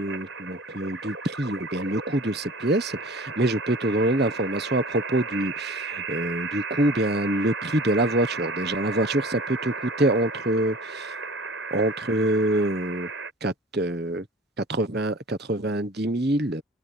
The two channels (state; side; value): normal; both; correlation 0.42